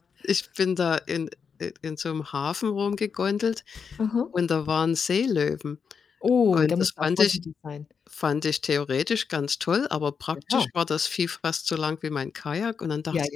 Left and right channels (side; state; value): right; quieter; 6.2 dB